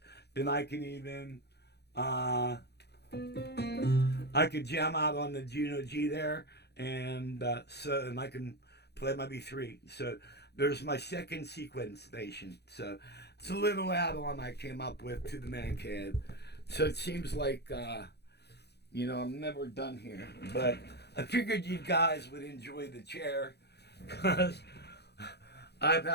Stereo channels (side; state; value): right; late; 0.48 ms